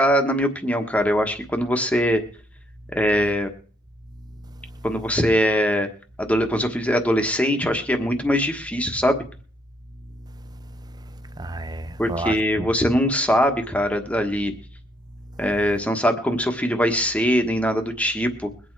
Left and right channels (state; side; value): normal; both; correlation 0.71